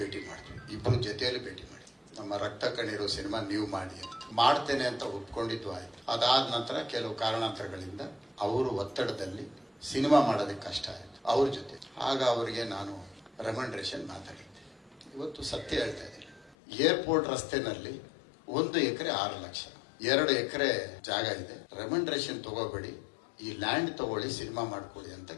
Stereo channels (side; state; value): right; drops out; at 16.6 s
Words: ಮಾಡ್ತೀವಿ. ಇಬ್ಬರು ಜೊತೆಯಲ್ಲಿ ಭೇಟಿ ಮಾಡಿ ನಮ್ಮ ರಕ್ತ ಕಣ್ಣೀರು ಸಿನಿಮಾ ನೀವು ಮಾಡಿ ಅಂತ ಮಾಡ್ತೇನೆ ಅಂತ ಒಪ್ಕೊಂಡಿದ್ದು ಆಯ್ತು. ಅದಾದ ನಂತರ ಕೆಲವು ಕಾರಣಾಂತರಗಳಿಂದ ಅವರು ಒತ್ತಡದಲ್ಲಿ ಸಿನಿಮಾ ಮಾಡೋದಕ್ಕೆ ಕಷ್ಟ ಆಯಿತು ಅವ್ರ ಜೊತೆ. ಆಗ ಅವರಿಗೆ ನಾನು ರೆಕಮೆಂಡೇಶನ್ ಮಾತಾಡಿದ್ದೆ. ಇವತ್ತು ಸತ್ಯ ಹೇಳ್ತಾ ಇದ್ದೀನಿ. ಏರ್ಪೋರ್ಟ್ ರಸ್ತೆನಲ್ಲಿ 1 ಎಕರೆ 6 ಲಕ್ಷ, 2 ಎಕರೆ ಜಾಗ ಇದೆ. ರೆಕಮೆಂಡೇಶನ್ ತಗೋಬೇಡಿ, ಈ ಲ್ಯಾಂಡ್ ತಗೊಳ್ಳಿ, ಸಿನಿಮಾ ಮಾಡ್ಕೊಳ್ಳಿ ಅಂತ